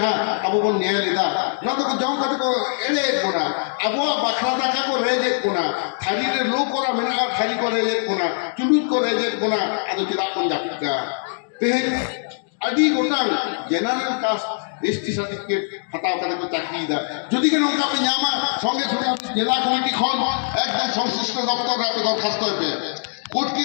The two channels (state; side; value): silent; right; digital silence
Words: अब वो न्याय लेदा ना तो जाऊं कते को एले कोना अब वो बखरा दाका को रेजे कोना थारी रे लो कोरा मेना थारी को रेजे कोना चुलुत को रेजे कोना आदो किदा कोन जापिका ते আদি গোটাং জেনারেল কাস্ট এসটি সার্টিফিকেট হাতাও করে তো চাকরি দা যদি কেন ওকা আপনি জামা সঙ্গে সঙ্গে আপনি জেলা কমিটি খন একদম সংশ্লিষ্ট দপ্তরে আপনি দরখাস্ত হবে কোর্ট